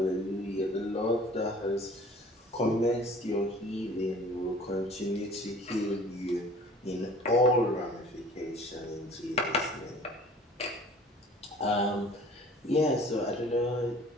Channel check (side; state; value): both; normal; correlation 0.49